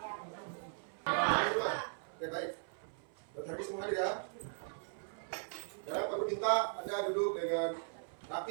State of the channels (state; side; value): silent; left; 52 dB below the other